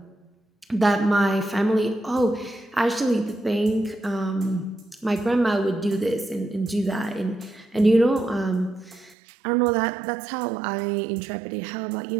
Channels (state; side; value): drops out; left; at 9.2 s